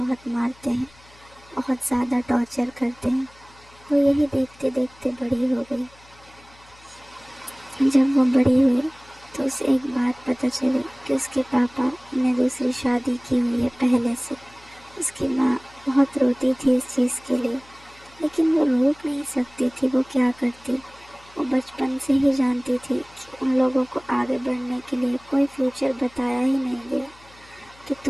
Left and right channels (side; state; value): left; noise; hum, 26 dB below the sound